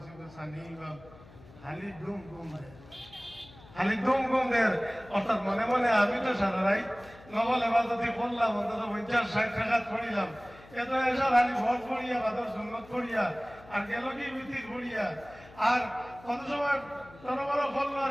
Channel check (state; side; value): noise; left; hum, 21 dB below the sound